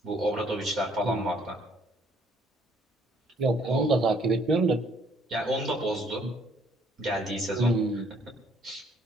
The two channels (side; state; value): both; normal; correlation 0.63